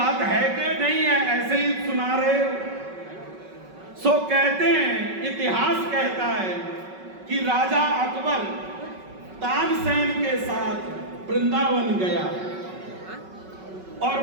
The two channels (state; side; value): late; left; 5.3 ms